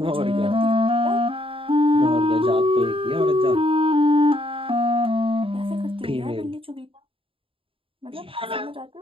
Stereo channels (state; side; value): late; left; 0.26 ms